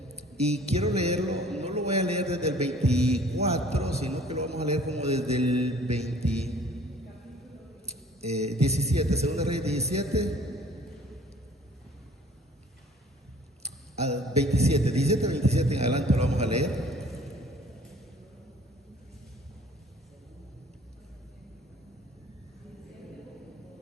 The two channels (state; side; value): normal; both; correlation 0.53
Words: Y quiero leerlo, no lo voy a leer desde el 24, sino que lo vamos a leer como desde el 17, Segunda Reyes 17 al 27, 17 al 27 en adelante lo vamos a leer.